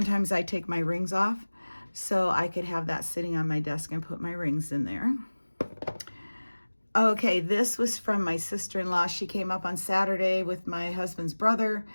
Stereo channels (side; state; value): both; inverted; correlation -1.00